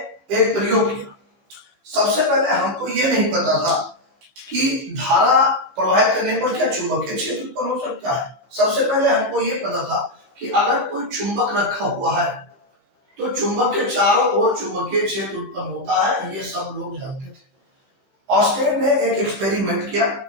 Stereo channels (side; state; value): left; late; 15 ms